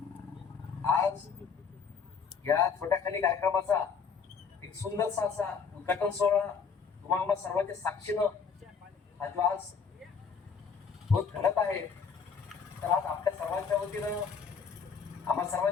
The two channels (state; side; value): quieter; right; 5.9 dB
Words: आज या छोट्याखानी कार्यक्रमाचा एक सुंदरसा असा उद्घाटन सोहळा तुम्हाला सर्वांच्या साक्षीनं हा जो आज होत घडत आहे, तर आज आपल्या सर्वांच्या वतीनं, आम्हा